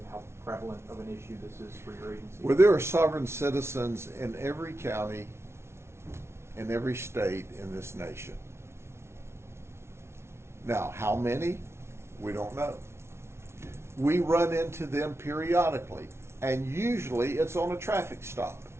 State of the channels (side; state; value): left; late; 0.13 ms